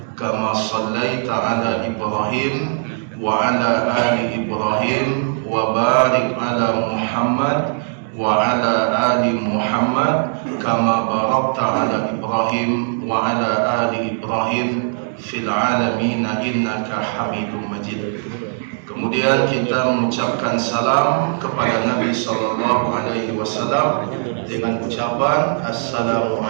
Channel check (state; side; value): silent; left; digital silence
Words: kama shallaita ala Ibrahim wa ala ali Ibrahim wa barik ala Muhammad wa ala ali Muhammad kama barakta ala Ibrahim wa ala ali Ibrahim fil alamin innaka Hamidum Majid. Kemudian kita mengucapkan salam kepada Nabi sallallahu alaihi wasallam dengan ucapan assalamu